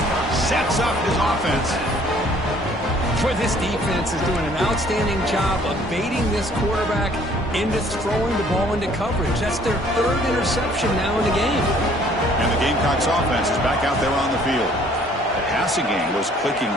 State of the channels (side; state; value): both; normal; correlation 0.58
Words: sets up his offense. Boy, this defense is doing an outstanding job of baiting this quarterback into throwing the ball into coverage. That's their third interception now in the game. And the Gamecocks offense is back out there on the field. The passing game was clicking